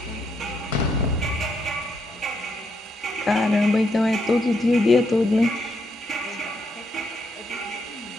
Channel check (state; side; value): normal; both; correlation 0.77